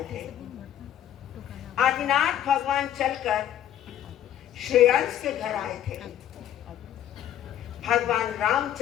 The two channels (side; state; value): right; quieter; 11.0 dB